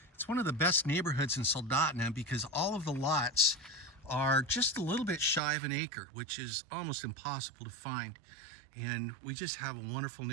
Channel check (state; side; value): drops out; left; at 5.4 s